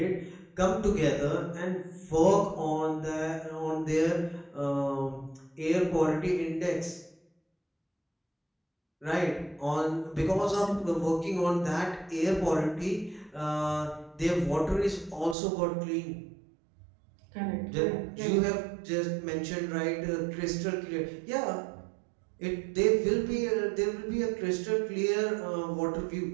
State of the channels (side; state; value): left; drops out; at 15.4 s